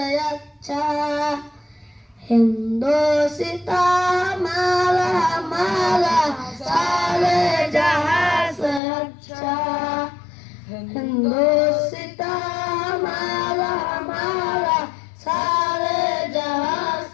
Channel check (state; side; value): drops out; right; at 8.8 s